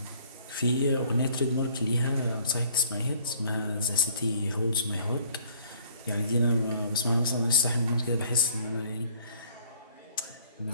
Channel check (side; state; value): both; inverted; correlation -0.56